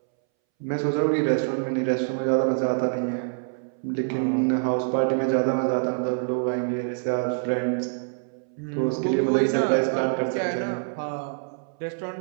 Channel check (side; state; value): left; silent; 61 dB below the other